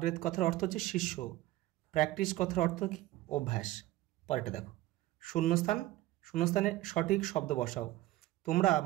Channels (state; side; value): quieter; left; 16.2 dB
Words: কথার অর্থ হচ্ছে শিষ্য। প্র্যাকটিস কথার অর্থ কি? অভ্যাস। পরেরটা দেখো, শূন্যস্থানে সঠিক শব্দ বসাও। তোমরা